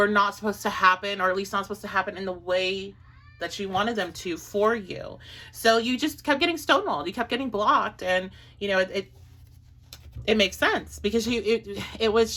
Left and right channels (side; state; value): both; identical; correlation 1.00